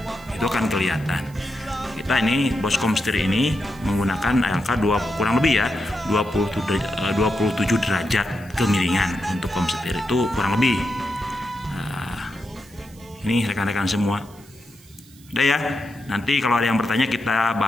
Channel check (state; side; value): noise; right; hiss, 25 dB below the sound